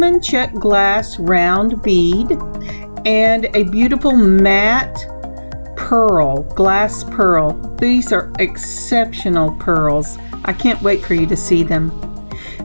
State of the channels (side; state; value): both; inverted; correlation -1.00